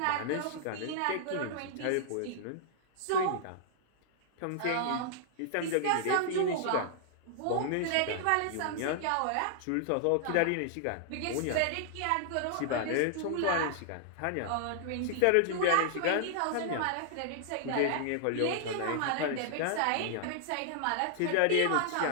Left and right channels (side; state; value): both; different; correlation -0.01